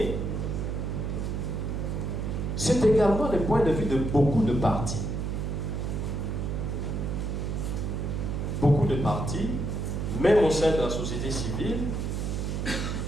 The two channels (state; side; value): noise; right; hum, 2 dB below the sound